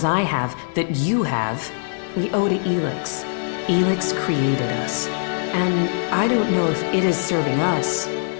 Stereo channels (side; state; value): right; silent; digital silence